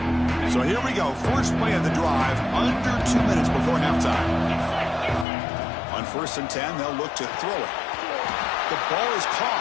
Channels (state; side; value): drops out; right; at 5.2 s